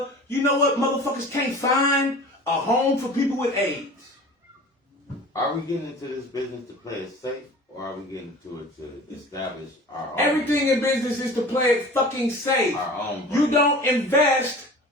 You know what? Motherfuckers can't find a home for people with AIDS. Are we getting into this business to play it safe, or are we getting into it to establish our own? Everything in business is to play it fucking safe. Our own. You don't invest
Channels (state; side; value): normal; both; correlation 0.41